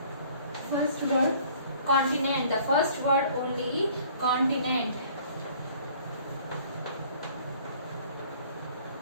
First word, continent. The first word only, continent.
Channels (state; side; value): inverted; both; correlation -0.55